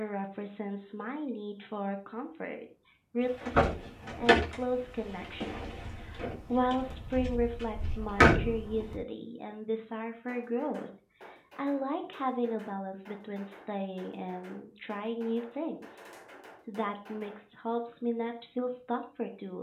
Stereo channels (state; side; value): identical; both; correlation 1.00